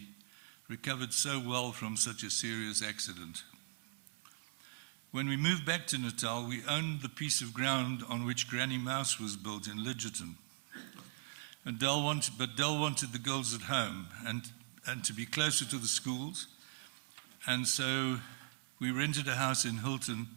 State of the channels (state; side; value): silent; left; 51 dB below the other